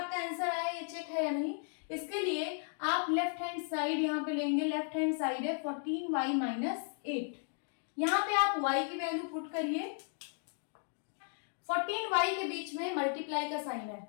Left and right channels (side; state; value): right; silent; 54 dB below the other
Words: आंसर आया ये चेक है या नहीं, इसके लिए आप लेफ्ट हैंड साइड यहाँ पे लेंगे, लेफ्ट हैंड साइड है 14y माइनस 8। यहाँ पे आप y की वैल्यू पुट करिए, 14y के बीच में मल्टीप्लाई का साइन है,